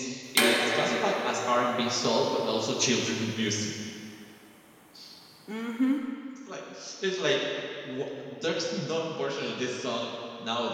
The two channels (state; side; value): identical; both; correlation 1.00